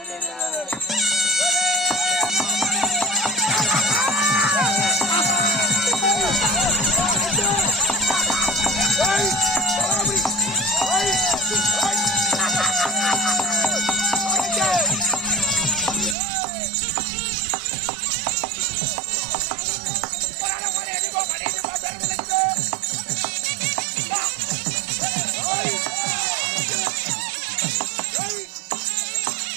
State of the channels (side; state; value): left; drops out; at 16.2 s